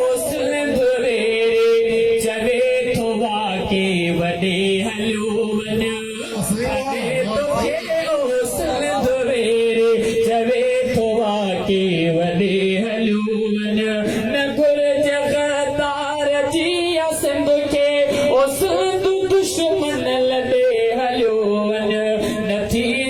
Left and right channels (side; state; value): both; identical; correlation 1.00